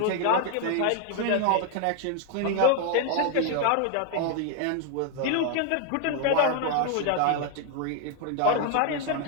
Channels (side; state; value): both; different; correlation 0.00